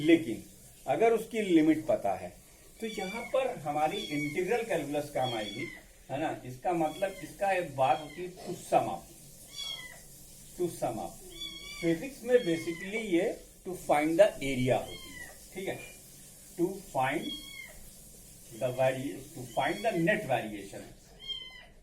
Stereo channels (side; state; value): both; identical; correlation 1.00